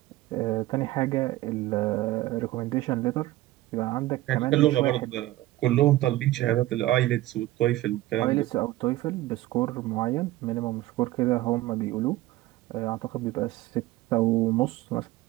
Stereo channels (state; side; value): quieter; left; 16.8 dB